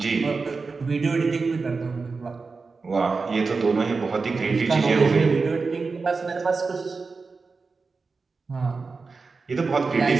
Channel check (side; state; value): left; quieter; 4.4 dB